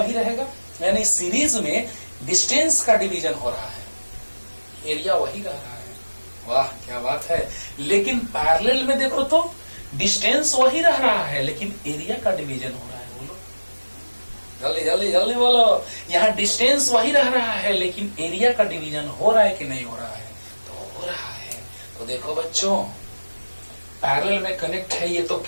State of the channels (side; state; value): both; inverted; correlation -1.00